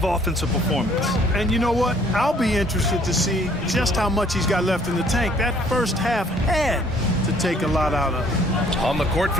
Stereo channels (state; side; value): normal; both; correlation 0.60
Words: offensive performance. And you know what? I'll be interested to see just how much he's got left in the tank. That first half had to take a lot out of. On the court